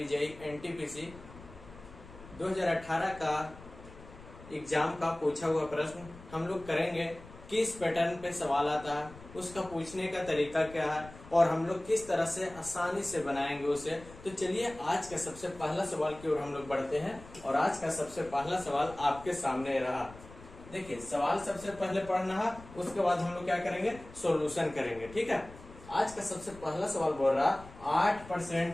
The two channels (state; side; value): noise; left; rumble, 18 dB below the sound